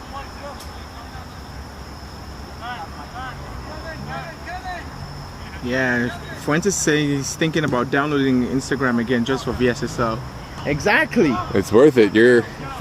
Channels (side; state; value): both; identical; correlation 1.00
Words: Yeah, Fuentes saying he's thinking about downloading Instagram again just for VSSL. Exactly. It's worth it. You're